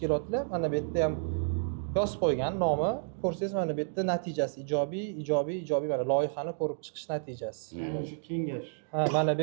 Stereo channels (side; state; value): left; silent; digital silence